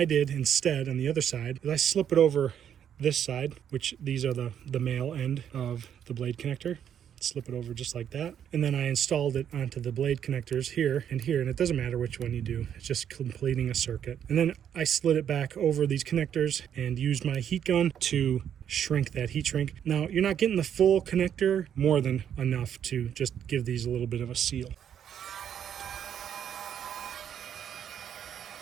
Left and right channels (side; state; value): left; quieter; 9.1 dB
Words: did instead on the other side is I slip it over this side, which these are the male end of the blade connector. Slip it over just like that. And then I installed it onto the blade connectors here and here, and it doesn't matter which one you do. It's just completing a circuit. And then I slid it back over these connectors and used my heat gun to shrink that heat shrink. Now, you're not getting the full connector, more than enough to just give these a little bit of a seal.